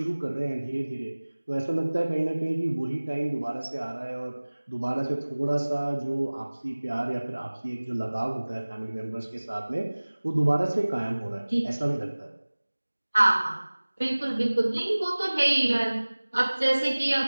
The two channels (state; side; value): inverted; both; correlation -1.00